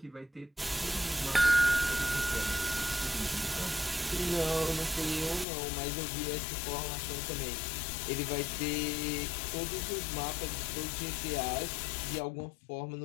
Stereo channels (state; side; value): drops out; right; at 5.5 s